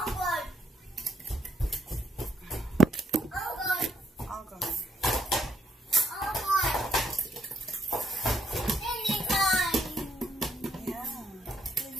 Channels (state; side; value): normal; both; correlation 0.72